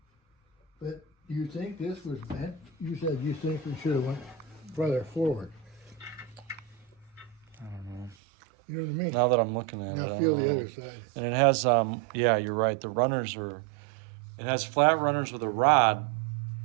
But you think this was bent? You said you think we should have went further forward. I don't know. You know what I mean? Now that I'm looking at it, Now I feel don't the know. other side. And it has, yeah, you're right. The runners are. It has flat runners with a rod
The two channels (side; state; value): left; drops out; at 8.2 s